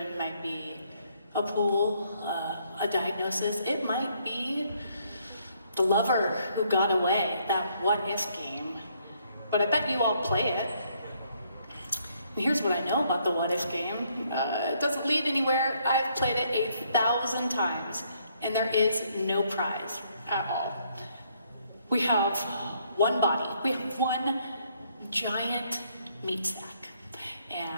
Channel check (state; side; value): inverted; both; correlation -0.69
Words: might be a pool, a diagnosis. It might be the lover who got away, that what if game. But I bet you all play it. And here's what I know about the what if game. It doesn't lead anywhere. I've played it 1,000 times, and there is no prize at all. We have one body. We have one giant meat sack.